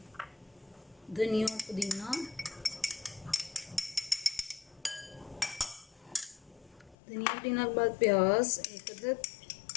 धनिया और पुदीना, धनिया पुदीना के बाद प्याज एक अदद,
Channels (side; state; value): right; drops out; at 7.0 s